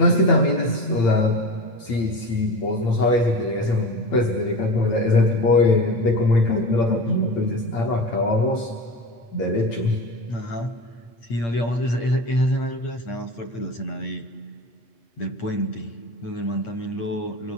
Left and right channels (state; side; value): late; right; 8.8 ms